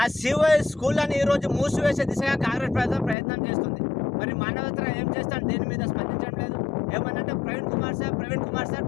సిఓ స్కూళ్ళని ఈరోజు మూసివేసే దిశగా కాంగ్రెస్ ప్రభుత్వం ప్రయత్నం చేస్తుంది. మరి మానవతరాయ్ ఏం చేస్తాడు? దీని మీద స్పందించడం లేదు. ఏమన్నంటే ప్రవీణ్ కుమార్ సార్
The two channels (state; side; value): drops out; right; at 3.2 s